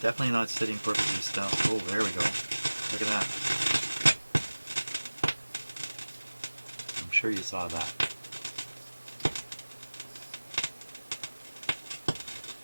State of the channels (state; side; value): inverted; both; correlation -1.00